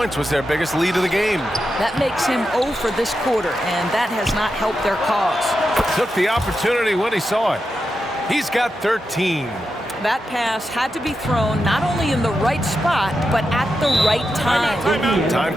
was their biggest lead of the game. That makes him 0 for this quarter, and that has not helped their cause. Took the opportunity when he saw it. He's got 13. That pass had to be thrown not only in the right spot, but at the right time. Time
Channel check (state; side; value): normal; both; correlation 0.88